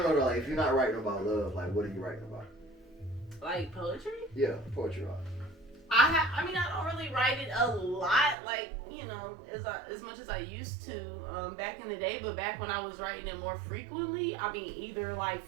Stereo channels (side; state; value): left; drops out; at 8.3 s